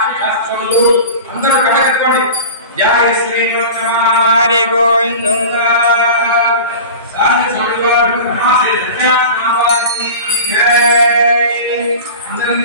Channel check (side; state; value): both; inverted; correlation -0.34